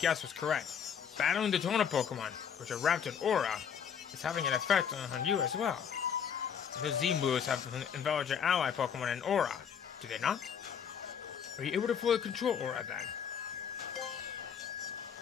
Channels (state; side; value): quieter; right; 7.7 dB